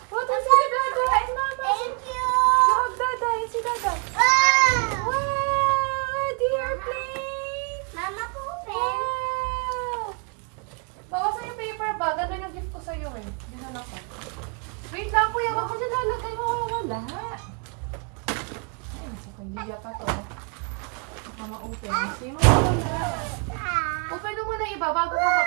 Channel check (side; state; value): left; quieter; 36.8 dB